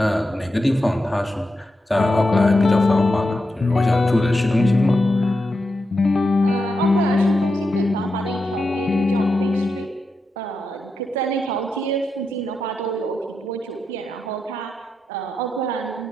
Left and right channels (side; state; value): both; normal; correlation 0.87